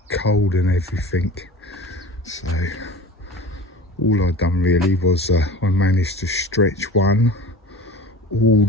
cold and everything. So all I've done really was I managed to stretch one all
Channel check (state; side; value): normal; both; correlation 0.38